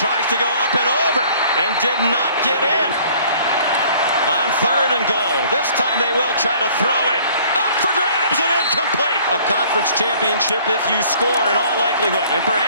to go up and over and did not get in. On 3rd and goal. This time they will try to throw it. Up for grabs and incomplete. A conference championship if you score in all likelihood. And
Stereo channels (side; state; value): both; inverted; correlation -0.55